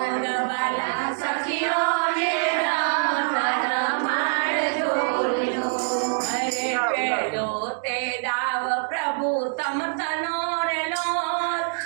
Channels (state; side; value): silent; left; digital silence